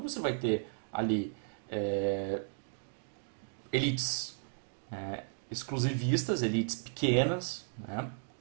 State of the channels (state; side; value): silent; left; digital silence